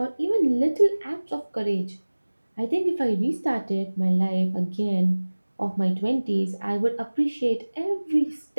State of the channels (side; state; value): both; inverted; correlation -1.00